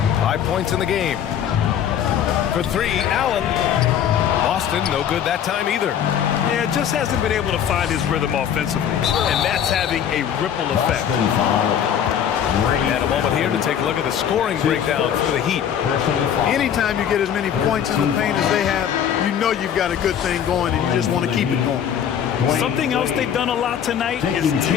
5 points in the game. For three, Allen. Boston, no good that time either. Yeah, just hasn't been able to find his rhythm offensively, and that's having a ripple effect. And a moment here to take a look at the scoring breakdown for the Heat. Anytime you get as many points in the paint as they have, you know you've got a good thing going and you just want to keep it going. Something else they've done a lot tonight is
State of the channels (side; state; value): right; quieter; 9.1 dB